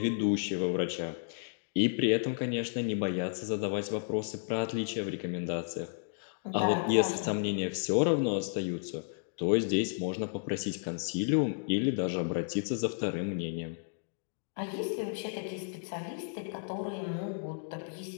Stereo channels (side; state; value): right; silent; digital silence